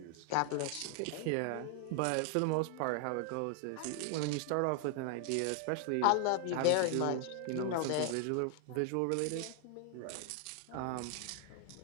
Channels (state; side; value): different; both; correlation 0.00